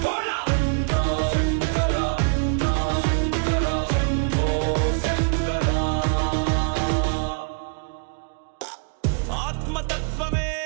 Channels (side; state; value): left; quieter; 38.3 dB